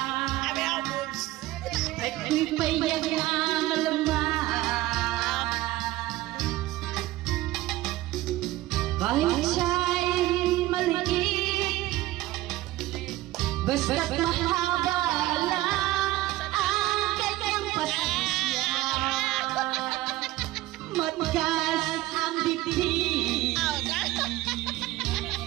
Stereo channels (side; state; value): left; quieter; 16.9 dB